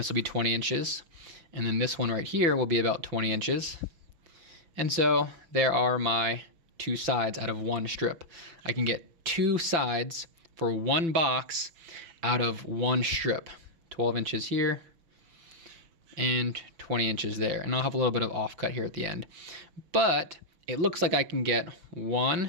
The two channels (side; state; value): left; late; 5.9 ms